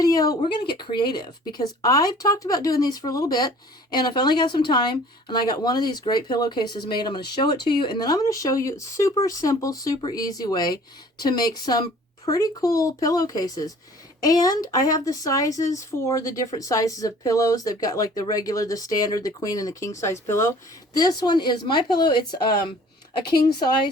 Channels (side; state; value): both; normal; correlation 0.51